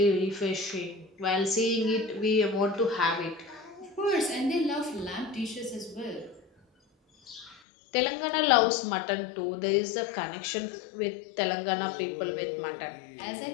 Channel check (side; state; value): right; drops out; at 7.6 s